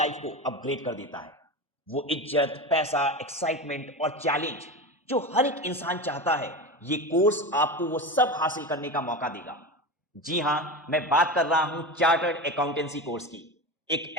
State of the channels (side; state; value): both; normal; correlation 0.24